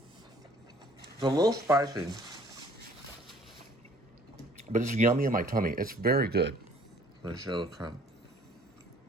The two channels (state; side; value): normal; both; correlation 0.56